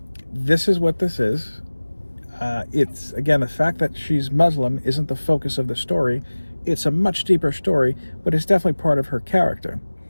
this is what this is. It's, again, the fact that she's Muslim isn't the focus of the story. It's a much deeper story, but it's definitely part of her character.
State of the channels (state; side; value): inverted; both; correlation -1.00